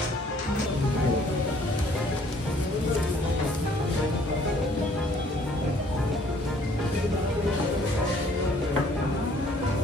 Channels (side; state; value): both; normal; correlation 0.60